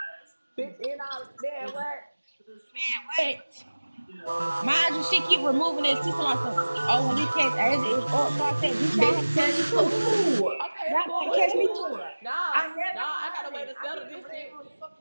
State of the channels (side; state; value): both; inverted; correlation -1.00